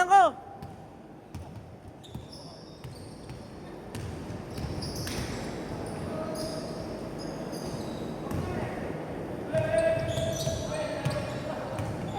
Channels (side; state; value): both; identical; correlation 1.00